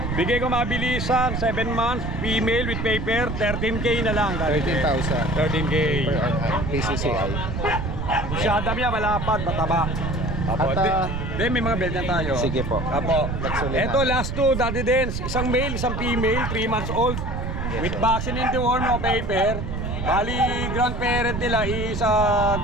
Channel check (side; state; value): right; noise; rumble, 4 dB below the sound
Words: Bigay ko mabilisan, 7 months, female with paper, 13K na lang, Daddy Dens. 13,000 13K. per PCCI. Masyada niya, malapad, mataba. Opo, At Then may mga belt na tayo. Sige po. Apo. Nagsulit Ito, na. last two, Daddy Dance. Isang male, isang female, 3 months old. With vaccine in the worm, no paper. Bali, grandparent nila is